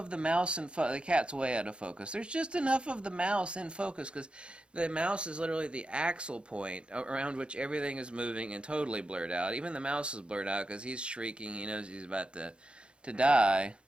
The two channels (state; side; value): late; left; 0.056 ms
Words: the mouse in focus. The cat's way out of focus. There's just enough of the mouse in focus because the mouse is literally the axle point around which everything is moving and totally blurred out. Even the mouse is blurred out because he's shrieking. He knows he's about to die.